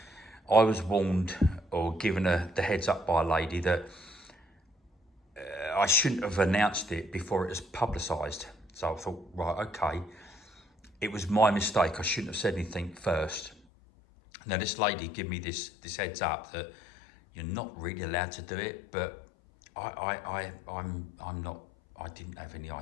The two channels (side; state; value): right; drops out; at 13.6 s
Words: I was warned or given the heads up by a lady that I shouldn't have announced it before it was publicised. So I thought, right, okay, it was my mistake. I shouldn't have said anything first. Now this lady gave me this heads up that you're not really allowed to do it, but I'm not. I didn't have any